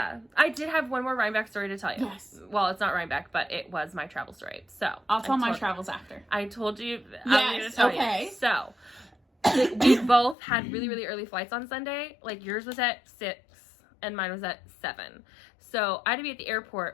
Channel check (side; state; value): right; drops out; at 10.4 s